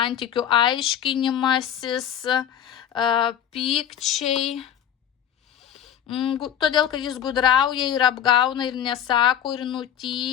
aiškinimasis, pykčiai. Todėl, kad jis gudrauja ir apgauna ir nesako ir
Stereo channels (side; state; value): right; quieter; 9.7 dB